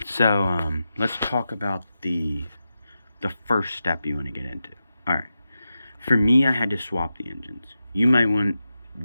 so let's talk about the first step you want to get into. Alright, for me, I had to swap the engines. You might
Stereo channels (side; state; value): both; inverted; correlation -0.89